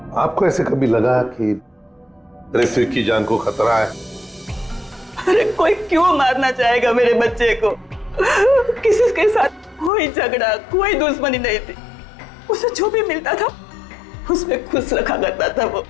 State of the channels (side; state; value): right; drops out; at 9.9 s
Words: आपको ऐसे कभी लगा कि ऋत्विक की जान को खतरा है? अरे कोई क्यों मारना चाहेगा मेरे बच्चे को? किसी के साथ कोई झगड़ा, कोई दुश्मनी नहीं थी। उसे जो भी मिलता था उसमें खुश रखा करता था वो।